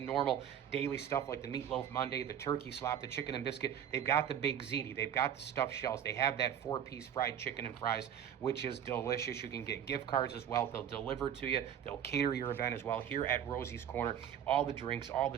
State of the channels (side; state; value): left; quieter; 9.4 dB